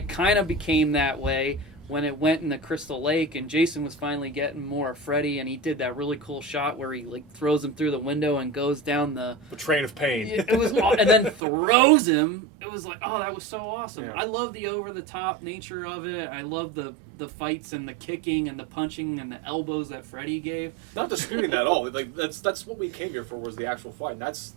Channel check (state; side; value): drops out; left; at 11.4 s